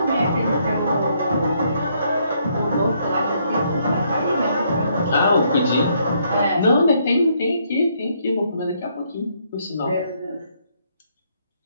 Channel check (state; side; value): inverted; both; correlation -0.71